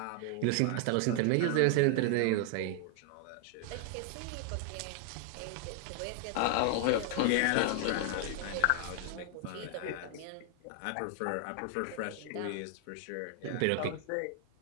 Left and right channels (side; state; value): both; different; correlation 0.00